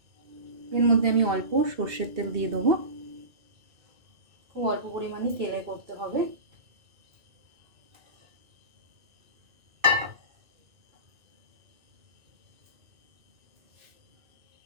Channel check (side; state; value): left; late; 2.3 ms